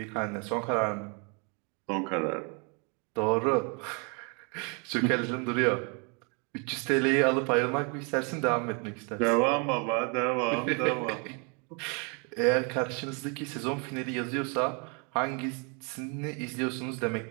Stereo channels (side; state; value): left; quieter; 34.8 dB